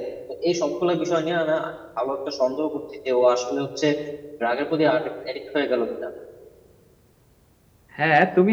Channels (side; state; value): both; identical; correlation 1.00